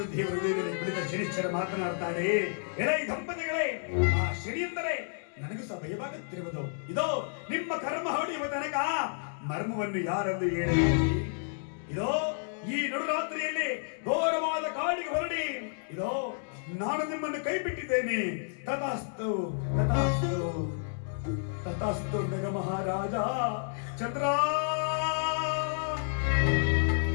ದೇವರು ಕುಳಿತ ಶನಿಶ್ಚರ ಮಾತನಾಡ್ತಾರೆ, ಎಲೈ ದಂಪತಿಗಳೇ ಆ ಶನಿ ಎಂದರೆ ನನಗೂ ಸಹ ಭಯವಾಗುತ್ತಿರುವುದು. ಇದೋ ನಿಮ್ಮ ಕರ್ಮ ಹೊಡೆಯುವ ತನಕ ಮರ್ಮವನ್ನು ಯಾರೆಂದು ಹೇಳಿ, ಇದೋ ಈ ನಡುರಾತ್ರಿಯಲ್ಲಿ ಘೋರವಾದ ಕಾಡಿಗೆ ಹೊರಡಿ, ಇದೋ ನಾನು ನಿಮ್ಮನ್ನು ಕೈ ಬಿಟ್ಟಿದ್ದೇನೆ. ತಥಾಸ್ತು ತಥಾಸ್ತು ತಥಾಸ್ತು ನಗ ಮಹಾರಾಜ ಚಂದ್ರ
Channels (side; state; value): right; silent; digital silence